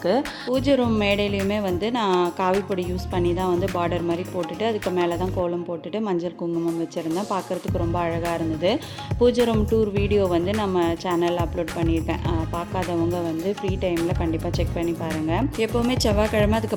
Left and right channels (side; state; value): both; identical; correlation 1.00